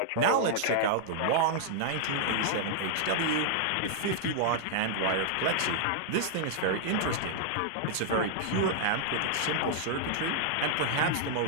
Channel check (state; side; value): different; both; correlation -0.01